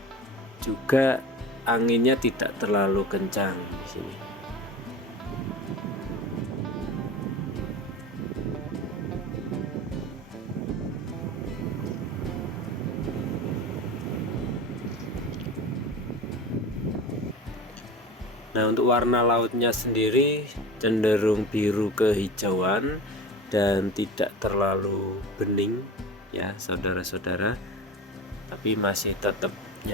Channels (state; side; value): normal; both; correlation 0.33